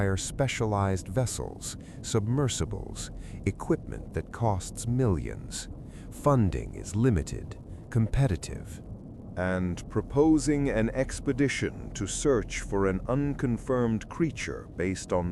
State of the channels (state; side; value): identical; both; correlation 1.00